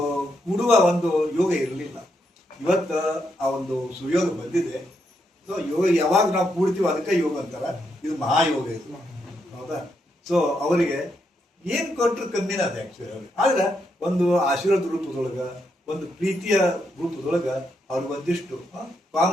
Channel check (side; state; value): both; normal; correlation 0.80